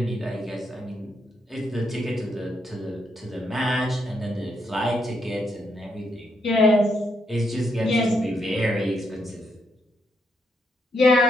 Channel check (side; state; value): both; normal; correlation 0.78